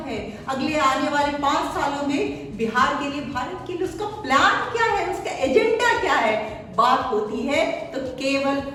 है, अगले आने वाले 5 सालों में बिहार के लिए, भारत के लिए उसका प्लान क्या है, उसका एजेंडा क्या है। बात होती है तो केवल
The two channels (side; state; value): both; identical; correlation 1.00